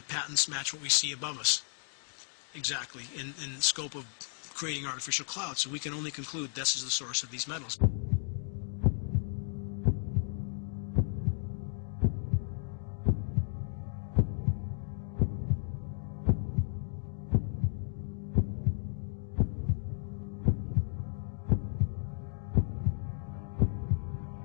patents match what we see above us exactly in the scope of creating artificial clouds. So we can only conclude this is the source of these metals.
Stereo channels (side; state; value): right; silent; 55 dB below the other